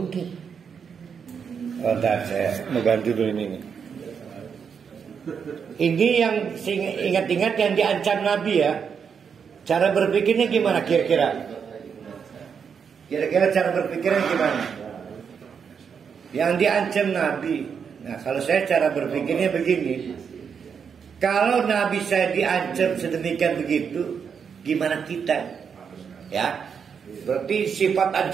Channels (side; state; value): left; quieter; 6.7 dB